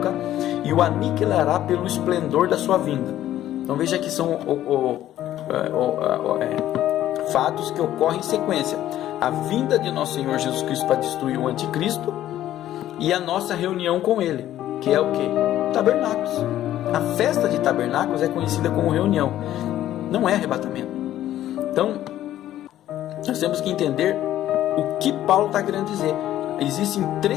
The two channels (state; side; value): quieter; right; 12.8 dB